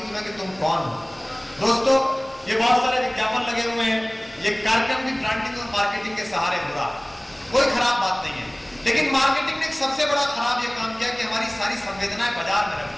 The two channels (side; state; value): left; noise; hum, 28 dB below the sound